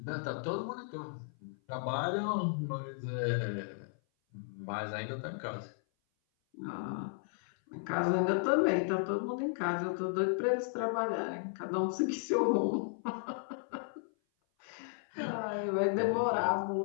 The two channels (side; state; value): right; silent; 55 dB below the other